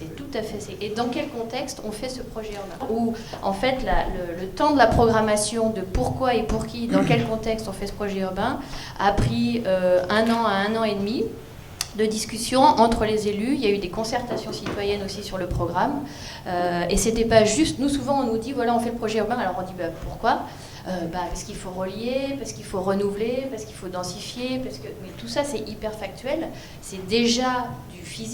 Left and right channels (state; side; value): identical; both; correlation 1.00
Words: tout à fait... Et dans quel contexte on fait ce projet urbain? Où en fait le temps de la programmation de pourquoi et pour qui, dans quel contexte on fait ce projet urbain, a pris 1 an à 1 an et demi de discussion entre les élus. Il y a eu des concertations citoyennes aussi sur le programme. Et c'était pas juste... Nous, souvent, on nous dit, voilà, on fait le projet urbain. Alors on dit, pourquoi ? Parce qu'il faut relier, parce qu'il faut renouveler, parce qu'il faut densifier. Mais tout ça, c'est hyper factuel. C'est déjà du